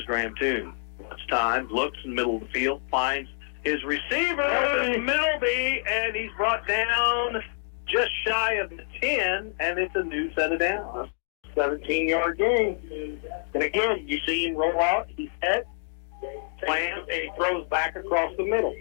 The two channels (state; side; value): silent; right; digital silence